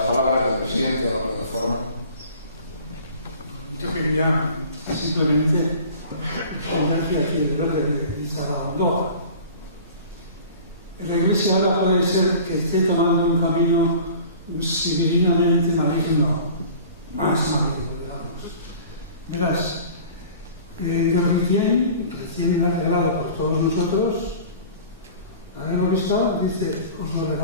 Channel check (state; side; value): inverted; both; correlation -0.43